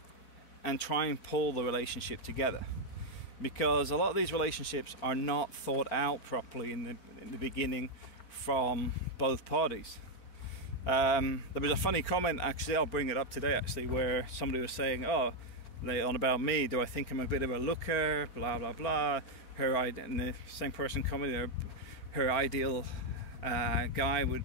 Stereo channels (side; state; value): right; late; 4.4 ms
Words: try and pull the relationship together. Because a lot of these relationships are not thought out properly in the beginning from both parties. There was a funny comment, actually, I'll bring it up today, actually, where somebody was saying, oh, on about me, do I think I'm a bit of a looker, blah, blah, blah. And the same person commented, her ideal guy